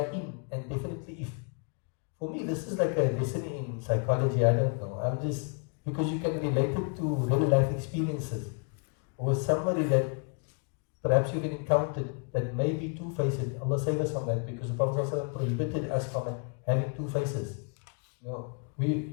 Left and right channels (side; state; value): right; quieter; 39.7 dB